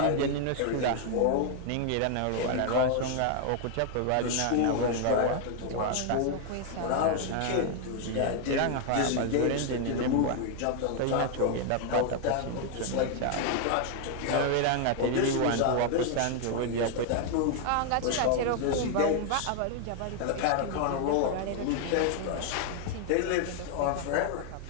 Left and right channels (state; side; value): different; both; correlation 0.00